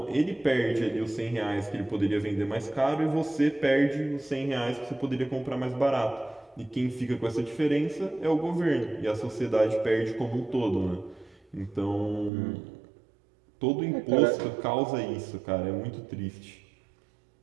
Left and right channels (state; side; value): drops out; left; at 12.3 s